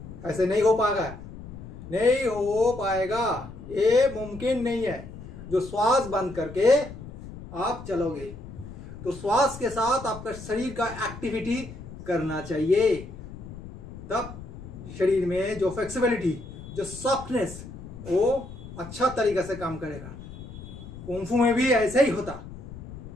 ऐसे नहीं हो पाएगा, नहीं हो पाएगा, ये मुमकिन नहीं है। जो श्वास बंद करके आप चलोगे, तो श्वास के साथ आपका शरीर का एक्टिविटी करना चाहिए, तब शरीर में जो फ्लेक्सिबिलिटी, जो सॉफ्टनेस, वो अच्छा तरीका से काम करेगा। कुंफू में भी ऐसे ही होता,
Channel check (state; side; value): noise; left; rumble, 13 dB below the sound